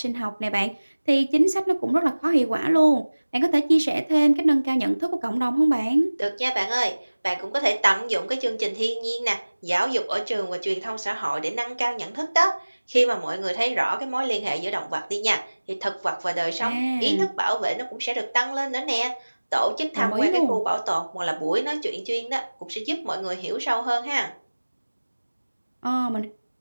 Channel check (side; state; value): both; inverted; correlation -1.00